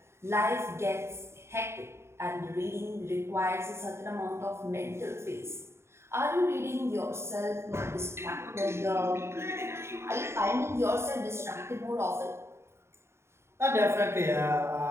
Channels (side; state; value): left; late; 0.13 ms